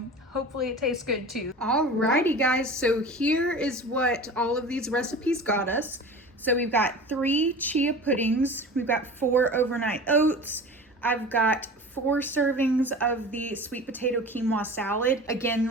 hopefully it tastes good too. Alrighty guys, so here is what all of these recipes got us. So we've got 3 chia puddings, we've got 4 overnight oats, I've got 4 servings of the sweet potato quinoa salad. Again,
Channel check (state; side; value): normal; both; correlation 0.36